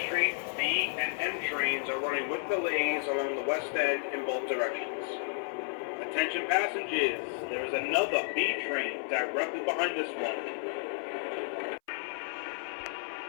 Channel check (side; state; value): right; silent; 56 dB below the other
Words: Street, B and M trains are running with delays along the west end in both directions. Attention passengers, there is another B train directly behind this one.